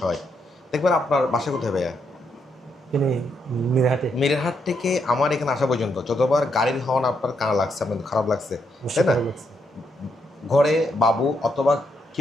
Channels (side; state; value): both; normal; correlation 0.78